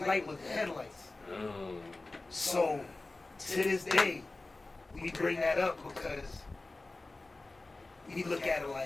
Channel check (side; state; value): right; quieter; 3.2 dB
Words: was the headlights. So to this day, we bring that up because we look at it